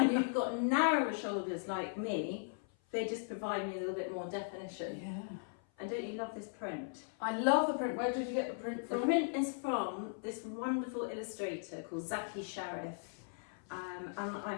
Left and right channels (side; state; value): right; silent; 53 dB below the other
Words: you've got narrower shoulders like me, they just provide me a little bit more definition. Yeah. And don't you love this print? I love the print. Where did you get the print from? The print is from this wonderful illustrator called Zaki Sharif. And